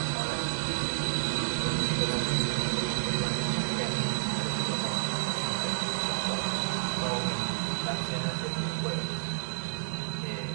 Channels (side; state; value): left; silent; 58 dB below the other